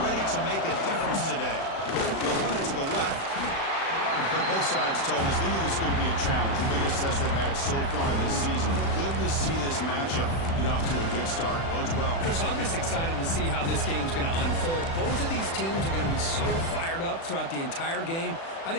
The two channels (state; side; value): late; right; 36 ms